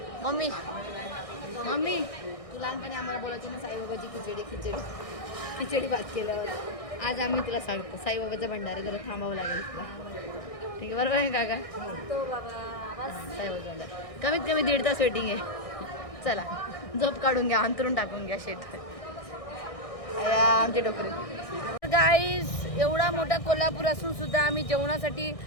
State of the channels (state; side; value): late; right; 1.6 ms